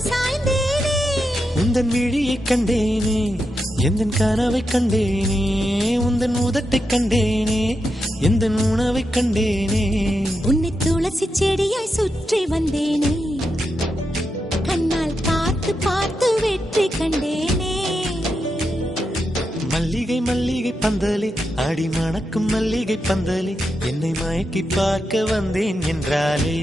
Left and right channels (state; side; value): normal; both; correlation 0.86